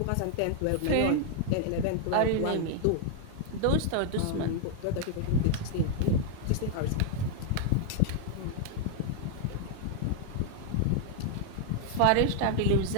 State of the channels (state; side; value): different; both; correlation 0.00